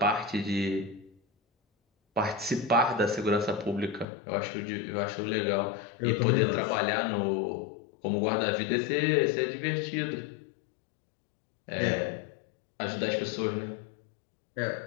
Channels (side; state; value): right; drops out; at 4.0 s